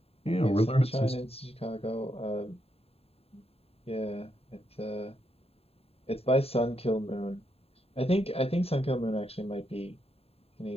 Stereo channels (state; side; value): late; right; 0.29 ms